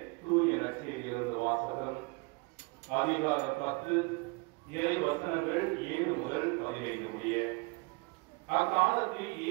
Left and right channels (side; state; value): left; quieter; 28.6 dB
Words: தூய நற்செய்தியிலிருந்து வாசகம். அதிகாரம் 10, இறை வசனங்கள் 7 முதல் 15 முடிய. அக்காலத்தில்